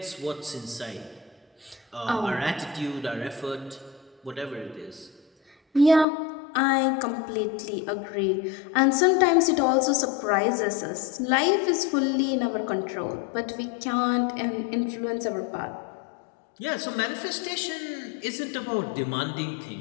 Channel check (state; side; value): drops out; right; at 6.1 s